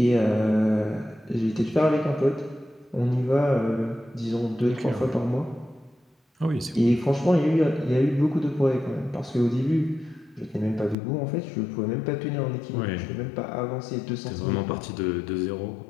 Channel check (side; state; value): right; drops out; at 11.0 s